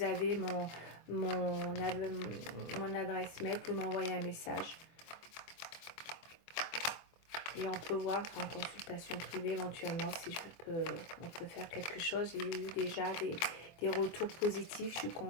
avez mon adresse mail, vous pouvez m'envoyer un message. Et on peut voir en consultation privée éventuellement si on peut faire quelque chose. J'ai eu déjà des retours positifs, je suis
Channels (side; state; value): right; late; 24 ms